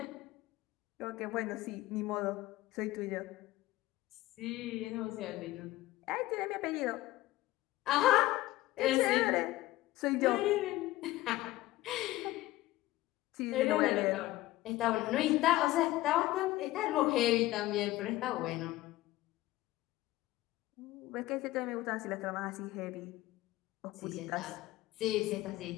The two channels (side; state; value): right; quieter; 17.1 dB